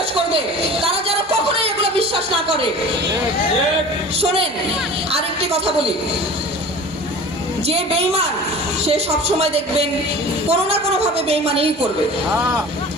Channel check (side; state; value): both; normal; correlation 0.40